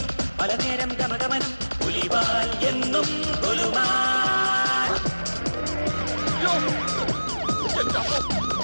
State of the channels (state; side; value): inverted; both; correlation -1.00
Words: പല നേരം ഗമഗമനം പുലിവാൽ എന്നും കൊലുമാൻ.